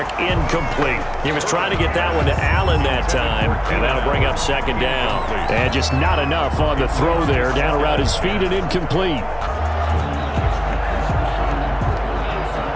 incomplete. He was trying to get that one to Allen that time, and that'll bring up 2nd down. And just not enough on the throw there, down around his feet and incomplete.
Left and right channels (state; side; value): identical; both; correlation 1.00